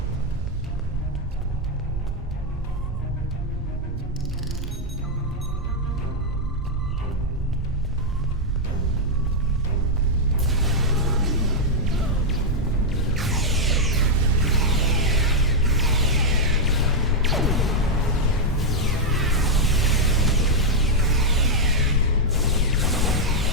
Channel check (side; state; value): both; normal; correlation -0.01